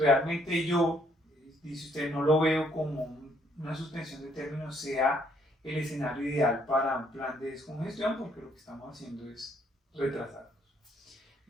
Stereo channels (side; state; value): both; normal; correlation 0.68